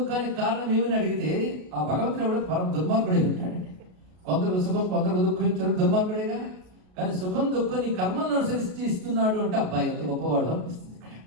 కారణం ఏమని అడిగితే ఆ భగవంతుడు కూడా పరమ దుర్మార్గుడే ఉంటాడండి. కొందరు సుఖం కొందరు దుఃఖం ఇచ్చడం దుర్మార్గుడేగా. కానీ సుఖం దుఃఖం నీ కర్మలను అనుసరించి ఇస్తున్నాడు అంటే అబ్బాయి ఎంత గొప్పవాడు అనిపిస్తుంది.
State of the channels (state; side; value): late; left; 33 ms